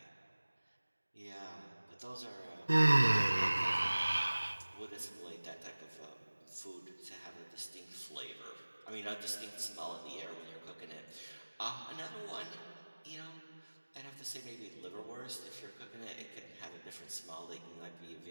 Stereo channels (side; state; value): both; inverted; correlation -1.00